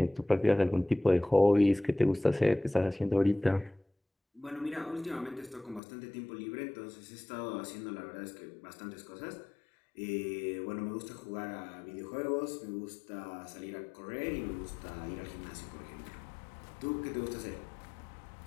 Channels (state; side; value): drops out; right; at 5.8 s